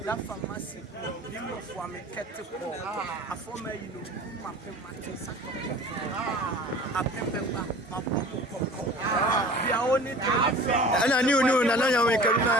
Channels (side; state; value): both; normal; correlation 0.43